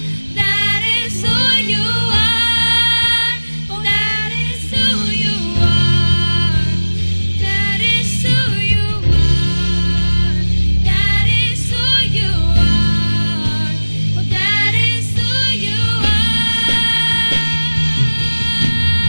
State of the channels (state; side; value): inverted; both; correlation -1.00